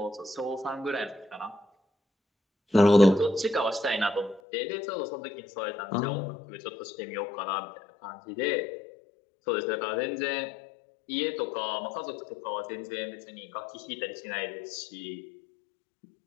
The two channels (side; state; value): right; drops out; at 4.4 s